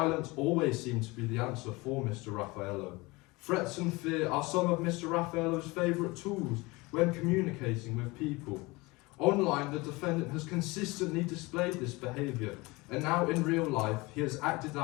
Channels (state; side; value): quieter; right; 23.5 dB